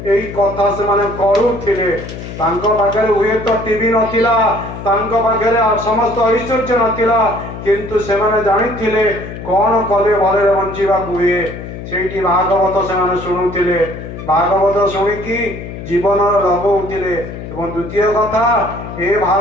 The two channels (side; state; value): left; noise; hum, 10 dB below the sound